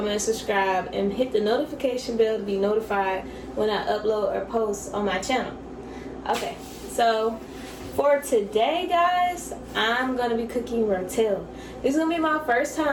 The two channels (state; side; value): identical; both; correlation 1.00